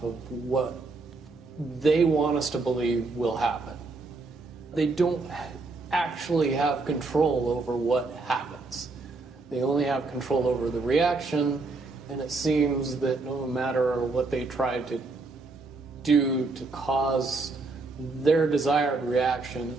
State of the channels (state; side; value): quieter; left; 3.6 dB